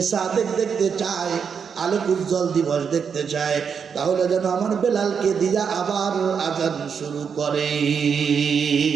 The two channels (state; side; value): quieter; left; 6.6 dB